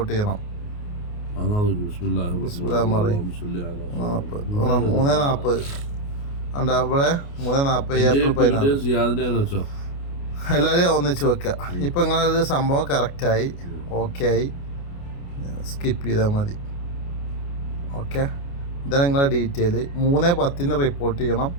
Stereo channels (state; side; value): late; right; 29 ms